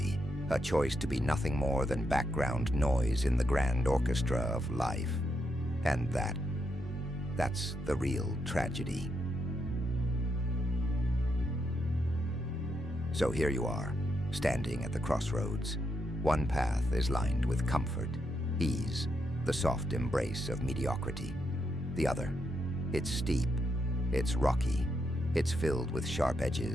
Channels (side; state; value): both; normal; correlation 0.81